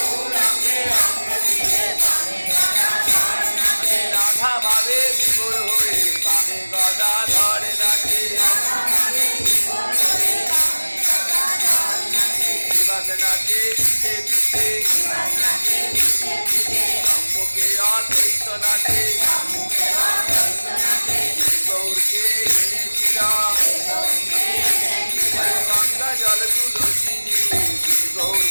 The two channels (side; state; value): both; inverted; correlation -1.00